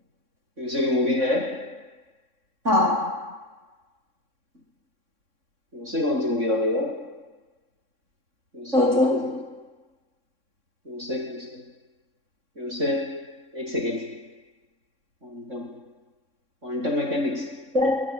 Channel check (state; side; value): late; left; 3.6 ms